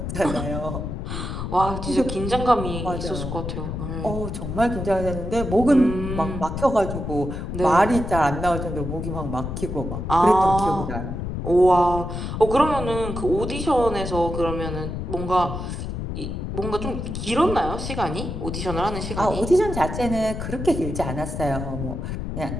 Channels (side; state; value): left; noise; rumble, 5 dB below the sound